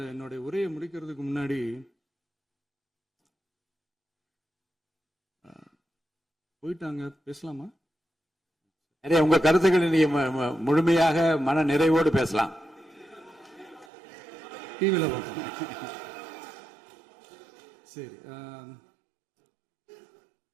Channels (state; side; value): drops out; left; at 13.9 s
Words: என்னுடைய உரையை முடிக்கிறதுக்கு முன்னாடி போயிட்டாங்க, பேசலாமா? உங்க கருத்துக்களை நீங்க முழுமையாக மன நிறைவோடு பேசலாம். டிவியில் பார்ப்போம். சரி,